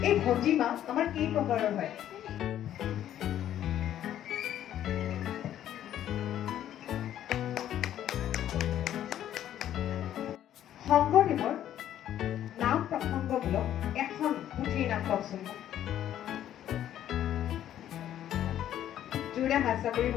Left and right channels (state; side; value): quieter; right; 11.4 dB